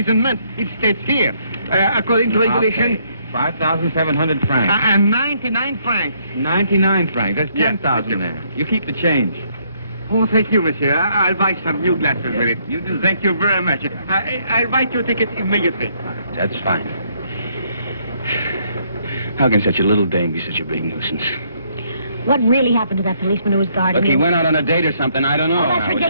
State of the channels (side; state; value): both; inverted; correlation -0.69